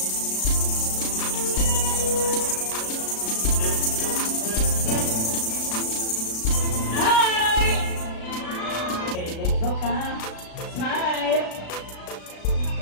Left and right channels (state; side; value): late; right; 36 ms